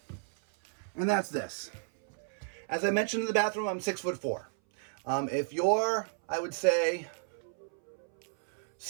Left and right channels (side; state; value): left; silent; 56 dB below the other